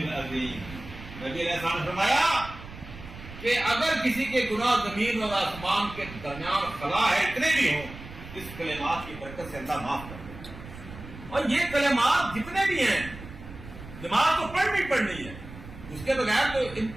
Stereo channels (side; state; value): right; noise; rumble, 14 dB below the sound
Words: نبی علیہ السلام نے فرمایا کہ اگر کسی کے گناہ زمین اور آسمان کے درمیان خلا ہے اتنے بھی ہوں، اس کلمات کی برکت سے اللہ معاف کر دے۔ اور یہ کلمات جتنے بھی ہیں نماز تو پڑھنی ہے، اس کے بغیر تو ان